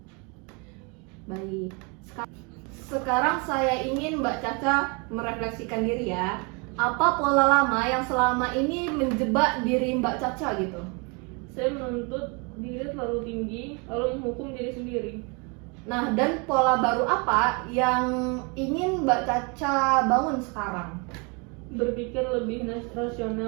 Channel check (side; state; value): left; quieter; 31.9 dB